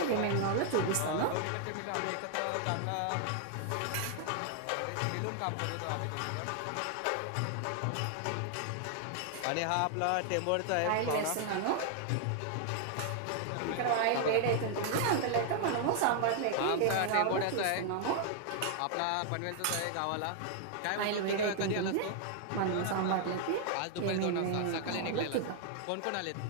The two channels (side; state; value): both; different; correlation 0.00